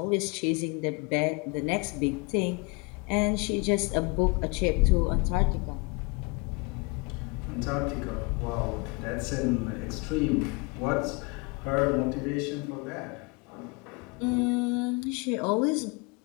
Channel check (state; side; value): quieter; right; 29.4 dB